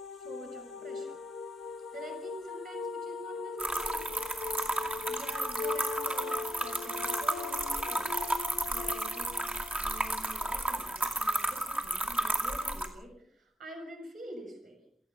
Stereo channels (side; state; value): both; normal; correlation 0.82